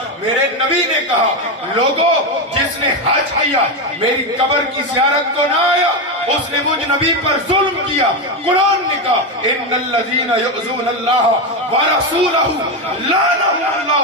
میرے نبی نے کہا لوگوں جس نے حج کیا میری قبر کی زیارت کو نہ آیا اس نے مجھ نبی پر ظلم کیا۔ قرآن نے کہا ان الذین یؤذون اللہ ورسولہ لعنہم اللہ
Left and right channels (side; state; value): both; normal; correlation 0.11